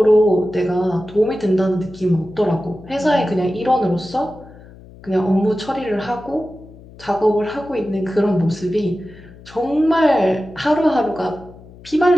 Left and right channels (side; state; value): left; noise; hum, 21 dB below the sound